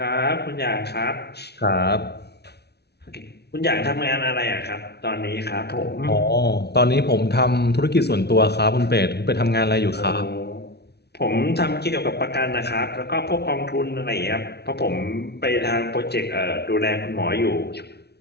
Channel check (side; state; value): right; late; 0.48 ms